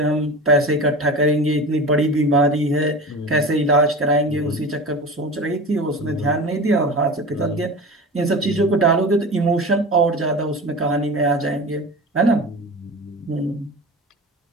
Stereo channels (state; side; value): normal; both; correlation 0.32